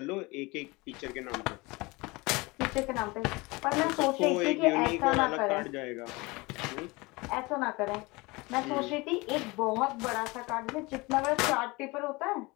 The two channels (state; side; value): quieter; right; 24.2 dB